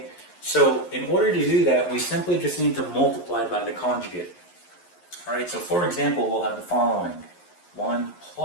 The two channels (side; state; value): right; late; 11 ms